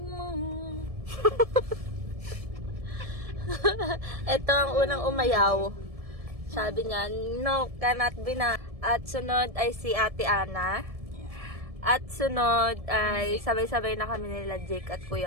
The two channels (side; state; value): left; late; 1.7 ms